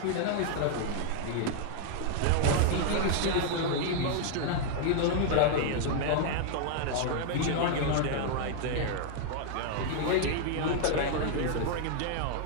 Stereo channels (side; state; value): both; different; correlation 0.00